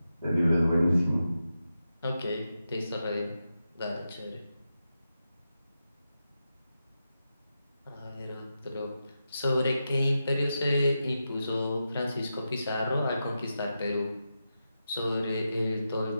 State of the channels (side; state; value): both; inverted; correlation -0.89